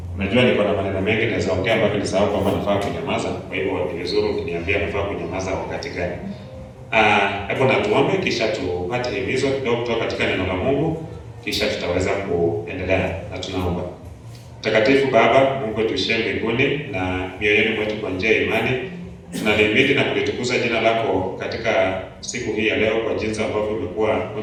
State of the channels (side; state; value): both; identical; correlation 1.00